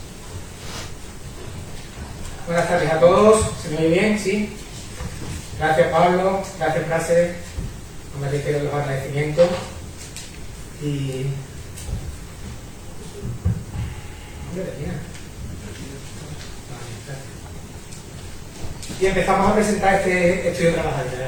Buenas tardes a todos. ¿Se me oye bien? ¿Sí? Gracias, Pablo. Gracias, Prase. No me reitero los agradecimientos. Y empezamos a presentar este estudio trabajador, ¿de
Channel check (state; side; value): identical; both; correlation 1.00